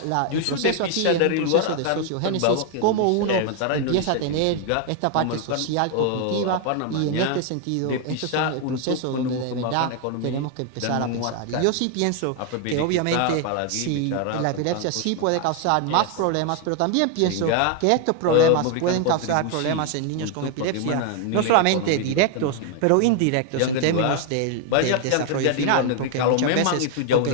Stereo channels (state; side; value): different; both; correlation 0.00